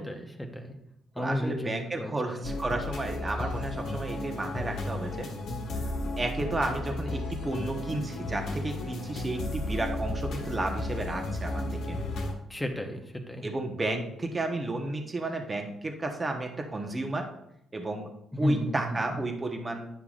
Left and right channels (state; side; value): normal; both; correlation 0.83